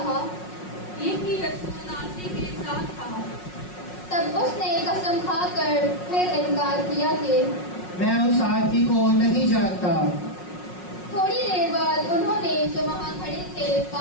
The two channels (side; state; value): right; late; 5.5 ms